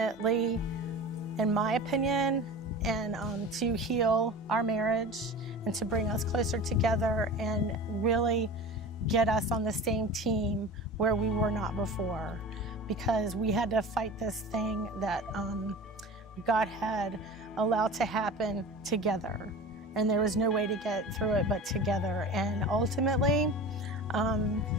in my opinion, and to heal our marriage and to bring us closer together and really get us on the same team where we were not before, because we had to fight this thing that God had allowed to happen together, and there was no way to get through it but together. And ultimately,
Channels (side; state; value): both; normal; correlation 0.35